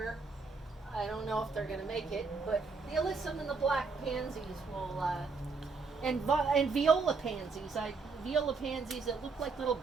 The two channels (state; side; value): quieter; left; 4.4 dB